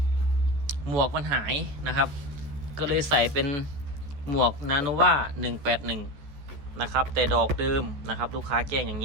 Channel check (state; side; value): late; left; 14 ms